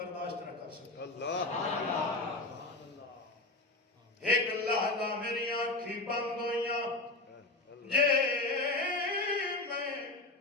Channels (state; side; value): quieter; right; 3.0 dB